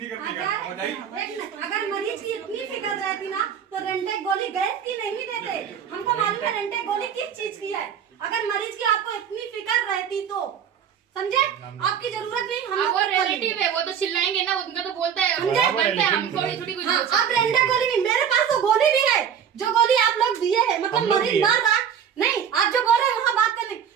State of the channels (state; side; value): quieter; left; 8.2 dB